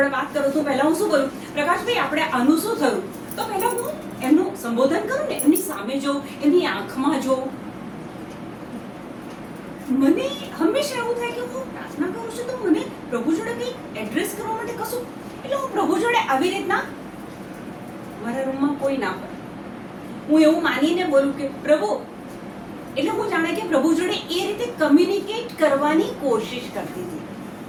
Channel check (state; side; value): identical; both; correlation 1.00